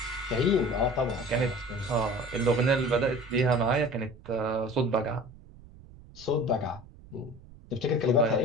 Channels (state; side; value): noise; right; rumble, 21 dB below the sound